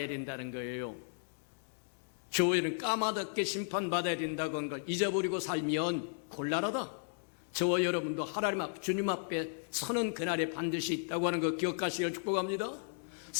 된다는 거예요. 저와 여러분 까마득게 심판받아야 된다고 하는 걸 잊어버리고 살면 곤란하다. 저와 여러분도 하나님 앞, 주님 앞에 서는 그날에 반드시 있다고 하는 거 기억하시길 축복합니다.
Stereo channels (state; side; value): silent; right; digital silence